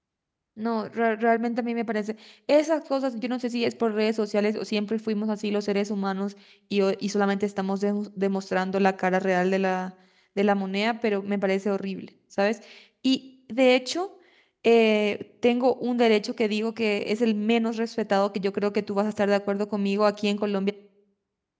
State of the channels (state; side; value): identical; both; correlation 1.00